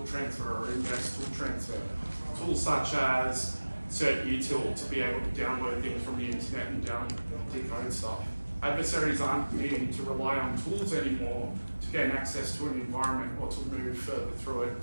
transfer or index tool transfer, tools such as certutil to be able to download things from the internet and decode stuff. Adversaries aren't needing to rely on tools anymore to gain access to an environment or to move further through it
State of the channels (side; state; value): both; inverted; correlation -1.00